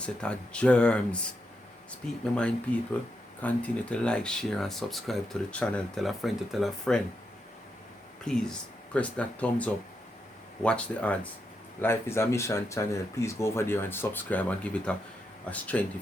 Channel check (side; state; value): both; normal; correlation 0.83